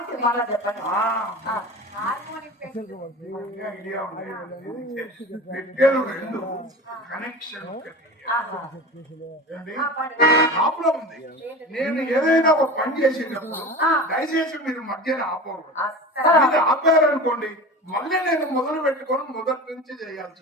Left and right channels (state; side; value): normal; both; correlation 0.32